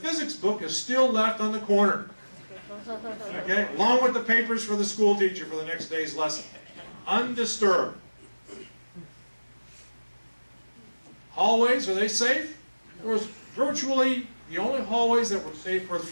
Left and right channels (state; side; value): inverted; both; correlation -1.00